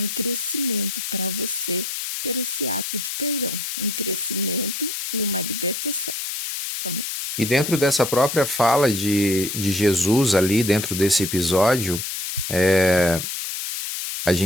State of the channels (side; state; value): left; noise; hiss, 5 dB below the sound